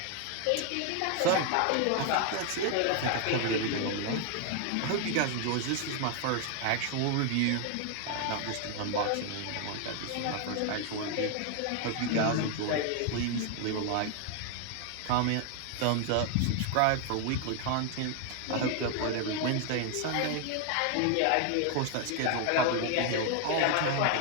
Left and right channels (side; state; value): both; different; correlation 0.00